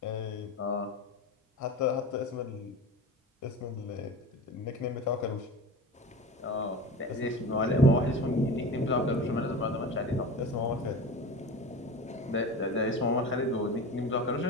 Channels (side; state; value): both; normal; correlation 0.31